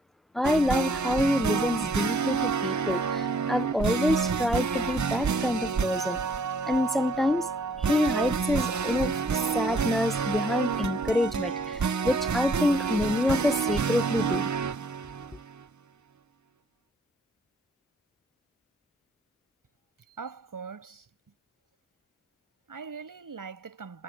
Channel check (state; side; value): normal; both; correlation 0.63